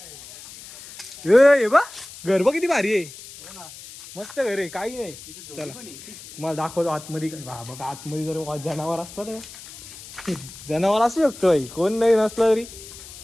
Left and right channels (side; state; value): left; noise; hiss, 16 dB below the sound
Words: बा घर बघ किती भारी आहे. मस्त घर आहे. काही नाही. चला तुम्हाला दाखवतो आतमध्ये. बघा आतमध्ये जर जनावर असतात, जनावर असू शकतो भाई. कोण नाही नसलं तरी